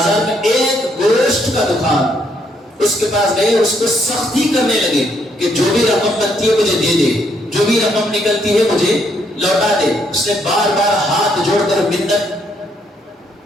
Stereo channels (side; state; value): both; normal; correlation 0.72